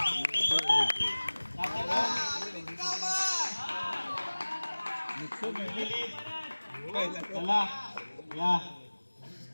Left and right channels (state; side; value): inverted; both; correlation -1.00